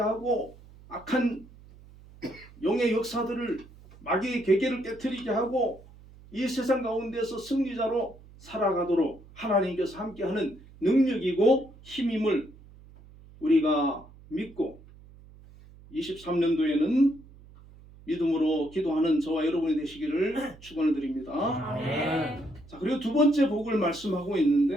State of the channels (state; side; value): noise; right; hum, 22 dB below the sound